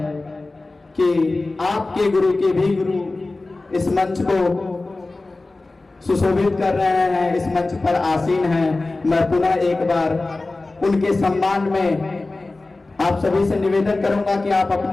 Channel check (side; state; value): right; quieter; 3.2 dB